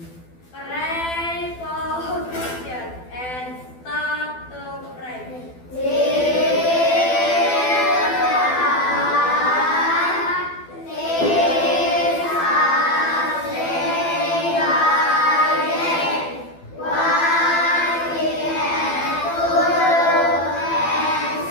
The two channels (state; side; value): late; right; 12 ms